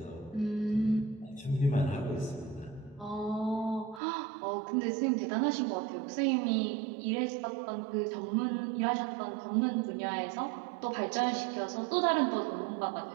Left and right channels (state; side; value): drops out; left; at 4.0 s